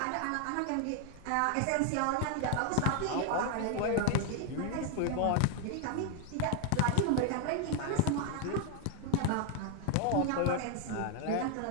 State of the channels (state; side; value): different; both; correlation 0.00